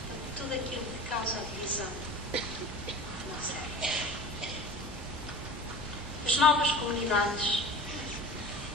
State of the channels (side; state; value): both; normal; correlation 0.36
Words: tudo aquilo que causa a divisão não serve. As novas comunidades,